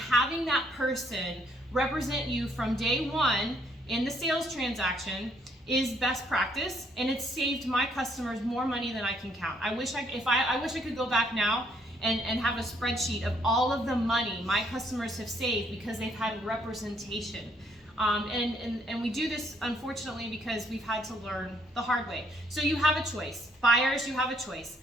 that person represent you from day one in the sales transaction is best practice, and it's saved my customers more money than I can count. I wish I could go back now and have a spreadsheet of all of the money my customers have saved because they've had representation. And we do this, unfortunately, because we've had to learn the hard way. So you have a choice. Buyers, you have a choice.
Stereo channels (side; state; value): both; normal; correlation 0.68